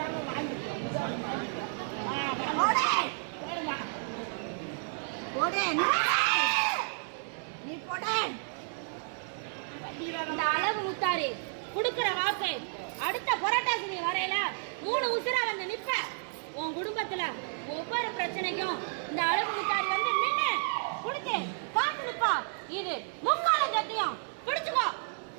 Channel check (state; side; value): silent; left; digital silence